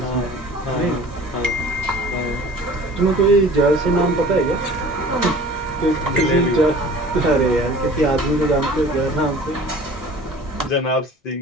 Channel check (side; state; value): both; normal; correlation 0.45